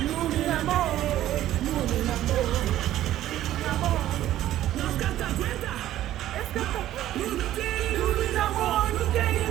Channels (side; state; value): left; quieter; 13.3 dB